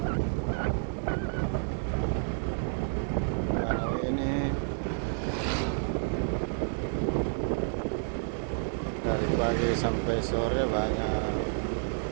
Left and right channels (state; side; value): silent; left; digital silence